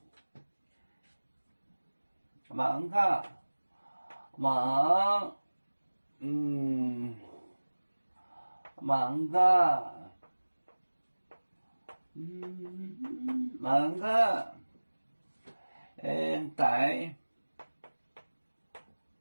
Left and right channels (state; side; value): inverted; both; correlation -1.00